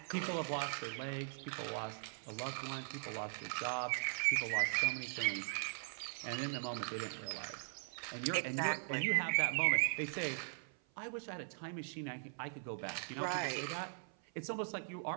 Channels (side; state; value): left; silent; 51 dB below the other